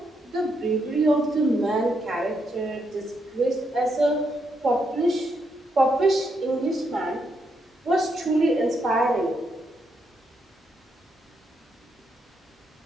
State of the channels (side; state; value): both; normal; correlation 0.79